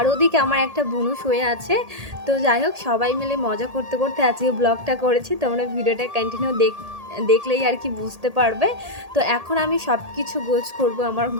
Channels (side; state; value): left; late; 1.8 ms